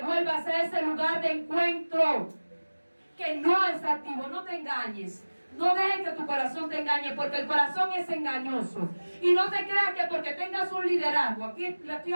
vuelvas a ese lugar de encuentro que no es activo. No te engañes. No dejes que tu corazón te engañe, porque el corazón es engañoso. Y no te creas que porque tengas un liderazgo, aquí le estoy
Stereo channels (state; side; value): inverted; both; correlation -1.00